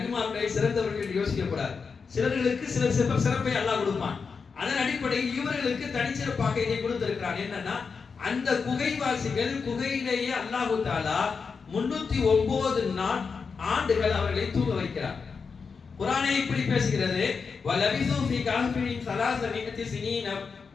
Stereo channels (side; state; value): right; quieter; 5.3 dB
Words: சிறந்தவர்கள் என்று யோசிக்கப்படாது. சிலர்களுக்கு சில சிறப்பை அல்லாஹ் கொடுப்பான். அதன் அடிப்படையில் இவர்களுக்கு தனிச்சிறப்பாக இதை கொடுத்திருக்கிறான். என்னன்னா, அந்த குகைவாசிகள் குகையிலேயே அல்லாஹ் தஆலா 309 ஆண்டுகள் அவர்களை தூங்க வைக்கிறார். குர்ஆனே இப்படி பேசுகிறது, வலபிசு ஃபீ கஹ்ஃபின் 300 சினீன,